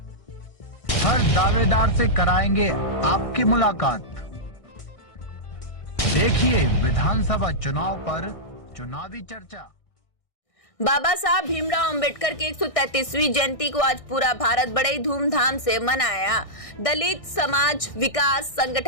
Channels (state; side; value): late; right; 1.6 ms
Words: हर दावेदार से कराएंगे आपकी मुलाकात। देखिए विधानसभा चुनाव पर चुनावी चर्चा। बाबा साहब भीमराव अंबेडकर की 133वीं जयंती को आज पूरा भारत बड़े धूमधाम से मनाया। दलित समाज विकास